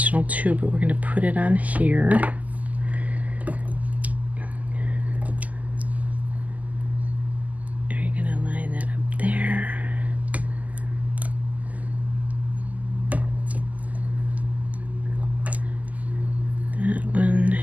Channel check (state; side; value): late; left; 0.077 ms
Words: too, but we're gonna put it on here. You're gonna line that up there. That one,